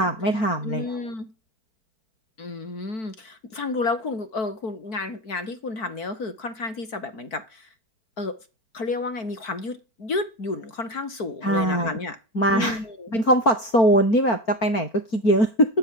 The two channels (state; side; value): late; right; 4.5 ms